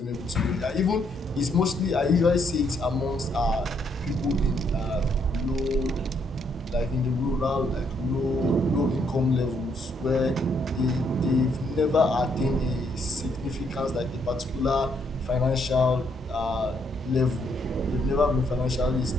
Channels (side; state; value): both; normal; correlation 0.72